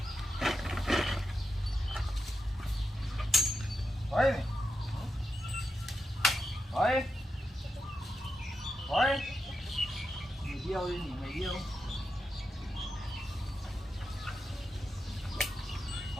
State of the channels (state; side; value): normal; both; correlation 0.87